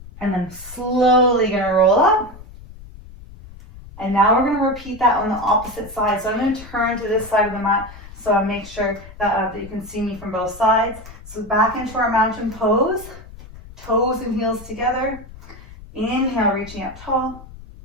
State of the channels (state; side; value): noise; left; rumble, 17 dB below the sound